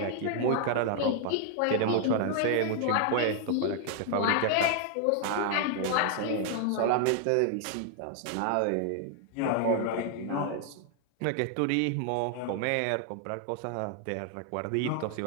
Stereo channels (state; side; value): different; both; correlation 0.00